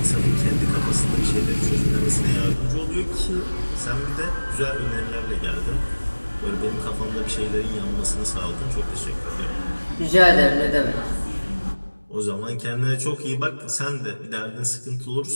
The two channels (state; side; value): inverted; both; correlation -1.00